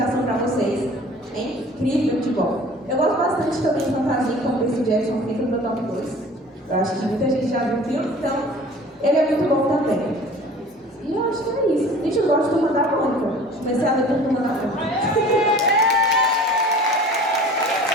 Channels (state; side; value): normal; both; correlation 0.45